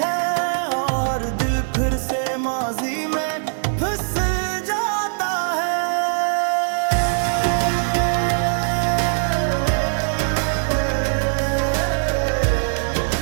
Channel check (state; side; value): silent; left; 65 dB below the other